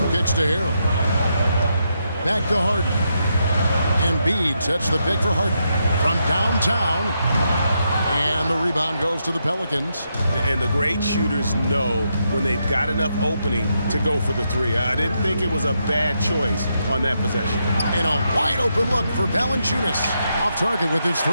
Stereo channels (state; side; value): inverted; both; correlation -0.81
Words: kicks to Harrell. Back to Harden. Embiid sets the pick for Harden from downtown. And the rebound goes to the Pelicans. And the great shooters know when they've got enough opening to go for the 3. I didn't think it was a bad choice on that possession. And a wide open look for Valanciunas. Off target with his 3.